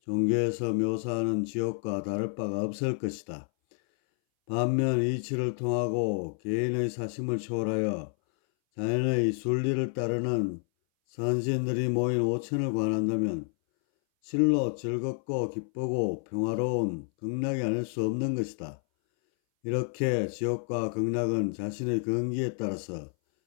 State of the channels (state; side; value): silent; right; 58 dB below the other